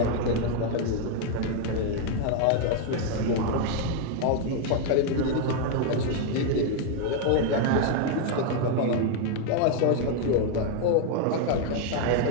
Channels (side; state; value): both; different; correlation 0.00